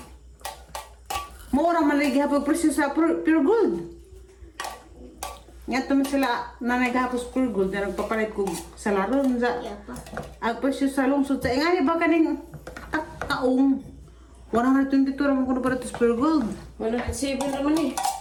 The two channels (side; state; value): both; identical; correlation 1.00